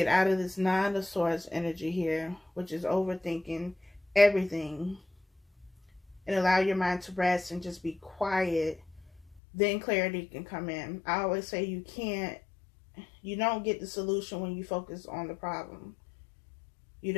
out of this Nine of Swords energy here, which is overthinking everything, and allow your mind to rest and just be quiet, then clarity can come in. I always say you don't get the solution when you focus on the problem. You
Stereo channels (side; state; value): right; drops out; at 9.4 s